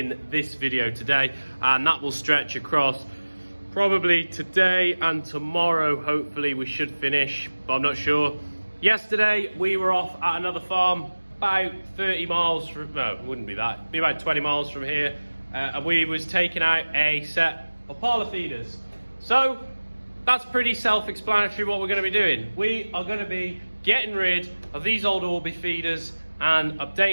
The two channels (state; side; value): inverted; both; correlation -1.00